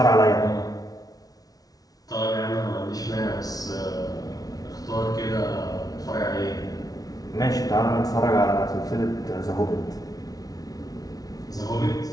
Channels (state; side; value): late; right; 0.18 ms